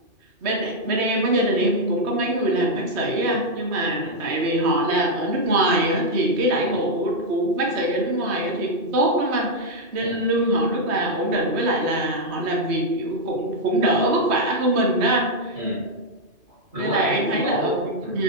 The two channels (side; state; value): left; late; 2.5 ms